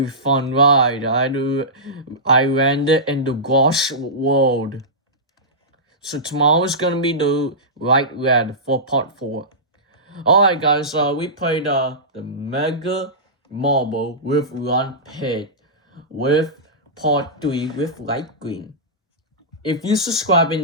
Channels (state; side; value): normal; both; correlation -0.17